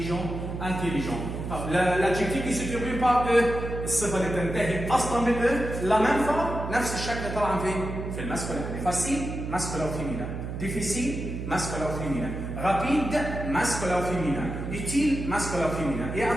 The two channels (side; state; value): right; noise; hum, 6 dB below the sound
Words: L'adjectif qui se termine par E الصفة اللي تنتهي أصلا بال E la même fois نفس الشكل طبعا في الماسكولين. facile masculin ou féminin, difficile masculin ou féminin, rapide masculin ou féminin, utile masculin ou féminin. Et